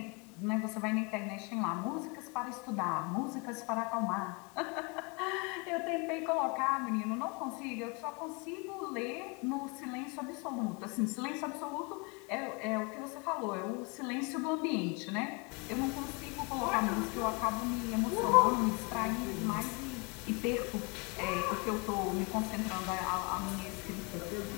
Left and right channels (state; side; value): quieter; right; 31.1 dB